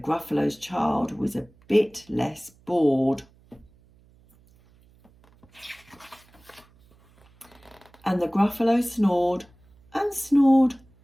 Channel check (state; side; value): noise; right; hum, 30 dB below the sound